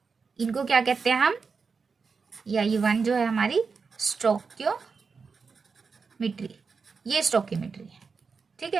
इनको क्या कहते हैं हम, या ये 1 जो है हमारी स्टोइकियोमेट्री, ये स्टोइकियोमेट्री है, ठीक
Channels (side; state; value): left; quieter; 5.1 dB